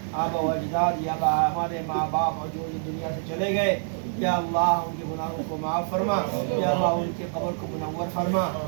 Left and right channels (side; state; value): left; silent; digital silence